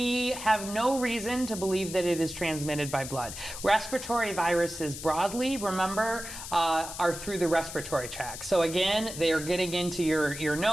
have no reason to believe that it is transmitted by blood. Respiratory viruses broadly, remember, are through the respiratory tract. So again, they are getting into your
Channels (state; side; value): noise; left; hiss, 10 dB below the sound